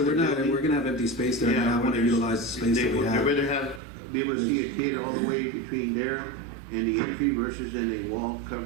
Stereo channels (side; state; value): left; drops out; at 3.8 s